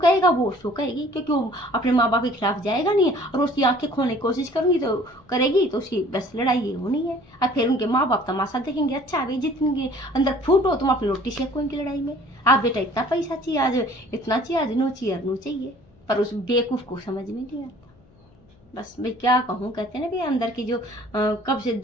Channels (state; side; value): noise; left; hum, 30 dB below the sound